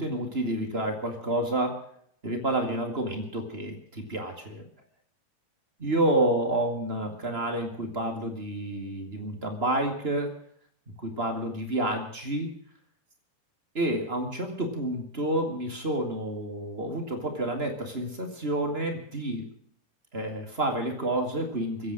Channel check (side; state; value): left; late; 2.9 ms